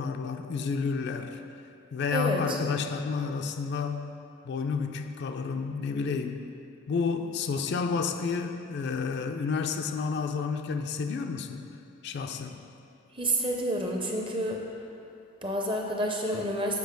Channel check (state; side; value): quieter; right; 3.0 dB